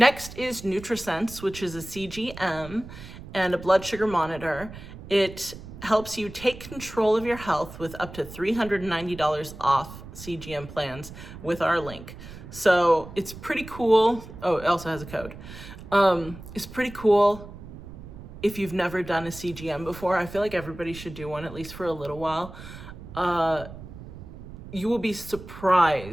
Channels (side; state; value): right; noise; rumble, 14 dB below the sound